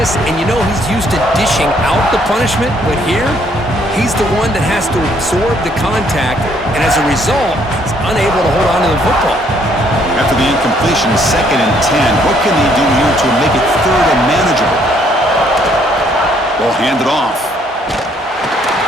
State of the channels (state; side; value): normal; both; correlation 0.67